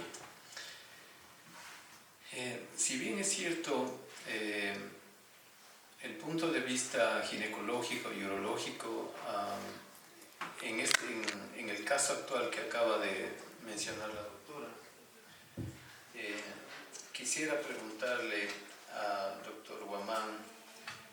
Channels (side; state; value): both; identical; correlation 1.00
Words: Si bien es cierto, el punto de vista ginecológico y urológico, en el caso actual que acaba de mencionar la doctora, quisiera preguntarle al doctor Guamán,